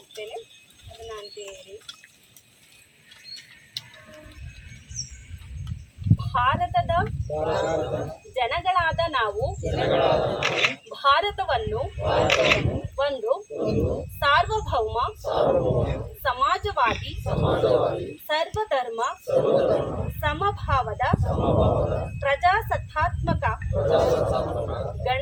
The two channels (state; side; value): identical; both; correlation 1.00